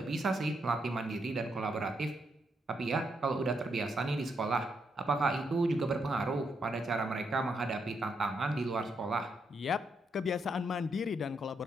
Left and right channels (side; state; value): both; normal; correlation 0.79